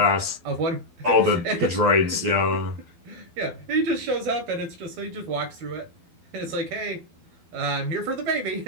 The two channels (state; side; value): late; left; 12 ms